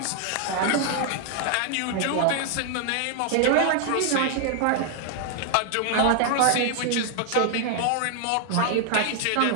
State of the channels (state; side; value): different; both; correlation 0.00